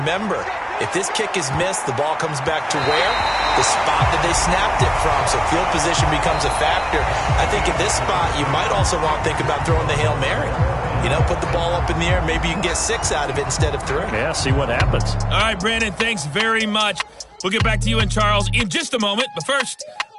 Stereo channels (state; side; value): identical; both; correlation 1.00